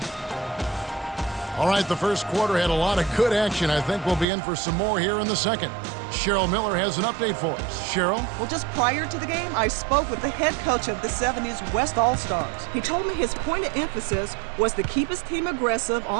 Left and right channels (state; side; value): drops out; left; at 4.2 s